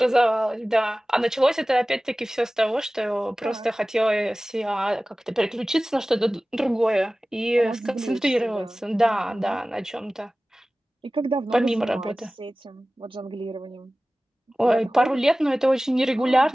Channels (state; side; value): normal; both; correlation 0.97